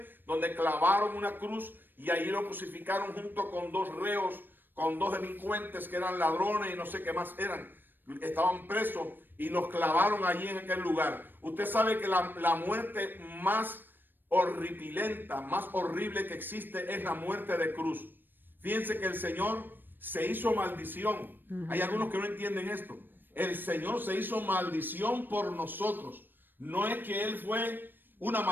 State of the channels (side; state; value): left; late; 0.094 ms